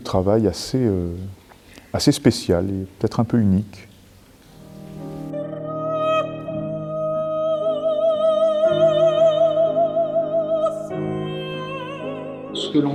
travail assez spécial et peut-être un peu unique. Ce que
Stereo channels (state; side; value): identical; both; correlation 1.00